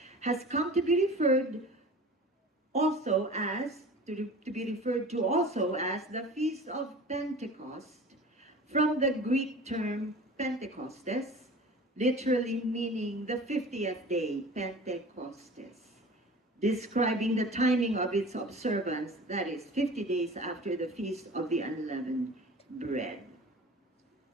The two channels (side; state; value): both; normal; correlation 0.40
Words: has come to be referred also as, the Feast of Pentecost, from the Greek term Pentecostes, literally meaning the 50th day, Pentecostes, describing the timing of its observance, that is 50 days after the Feast of the Unleavened Bread.